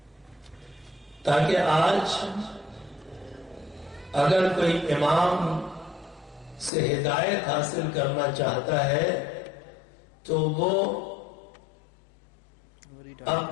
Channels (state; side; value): drops out; right; at 6.7 s